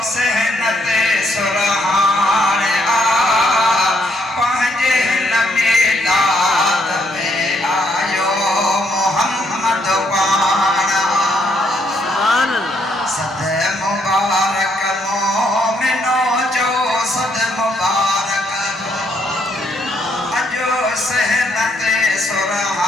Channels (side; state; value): both; normal; correlation 0.73